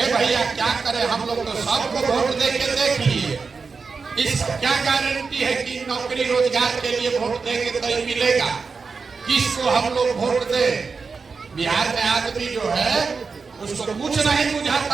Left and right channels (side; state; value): left; quieter; 4.9 dB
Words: भैया क्या करें, हम लोग तो सबको वोट दे के देख लिए, इस क्या गारंटी है कि नौकरी रोजगार के लिए वोट देंगे तो ही मिलेगा? किसको हम लोग वोट दे? बिहार में आदमी जो है उसको कुछ नहीं